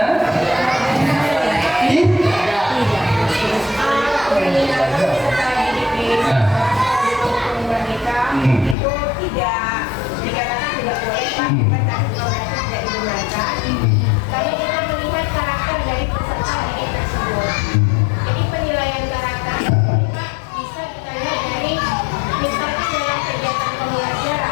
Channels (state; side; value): drops out; right; at 8.8 s